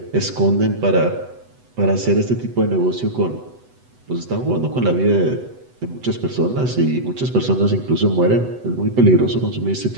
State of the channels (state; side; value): late; left; 8.0 ms